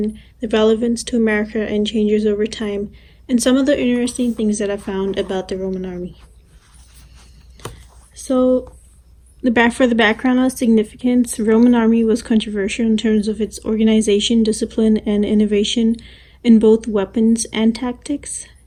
the relevance to America and changes over time, and some of the interesting things that I found about the Roman army. So, for the background of significance, the Roman army was controversial in terms of its organization, discipline, and innovation in both weapons and tactics.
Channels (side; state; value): both; identical; correlation 1.00